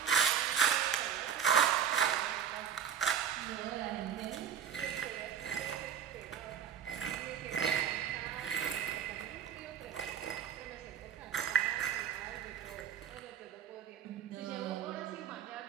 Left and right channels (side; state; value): left; quieter; 8.4 dB